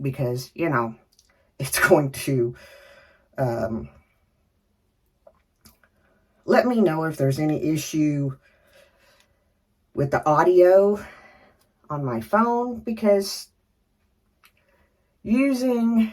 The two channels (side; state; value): both; identical; correlation 1.00